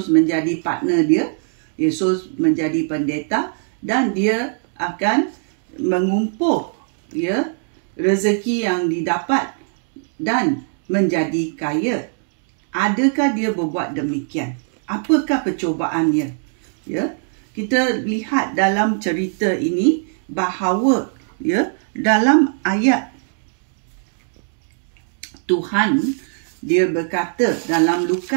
menjadi partner dia. Yesus menjadi pendeta dan dia akan mengumpul rezeki yang didapat dan menjadi kaya. Adakah dia berbuat demikian? Apakah percubaannya? Kita lihat dalam cerita ini bahawa dalam ayat Tuhan dia berkata dalam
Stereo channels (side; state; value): left; silent; 61 dB below the other